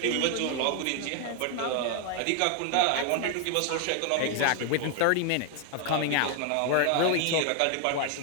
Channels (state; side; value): different; both; correlation 0.00